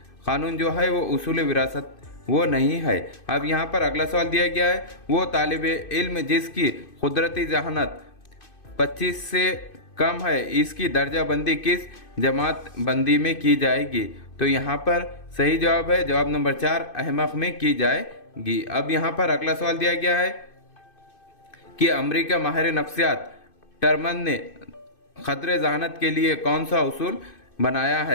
कानून जो है वो उसूल विरासत वो नहीं है। अब यहाँ पर अगला सवाल दिया गया है, वो तालिब इल्म जिसकी कुदरती जहानत 25 से कम है इसकी दर्जा बंदी किस जमात बंदी में की जाएगी। तो यहाँ पर सही जवाब है जवाब नंबर 4, अहमक में की जाएगी। अब यहाँ पर अगला सवाल दिया गया है कि अमेरिका माहिर नफ्सियात टर्मन ने खतरे जहानत के लिए कौन सा उसूल बनाया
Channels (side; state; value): right; late; 2.6 ms